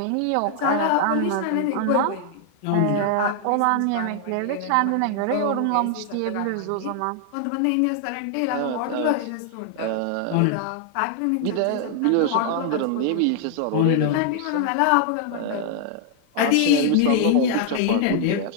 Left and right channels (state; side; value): different; both; correlation 0.00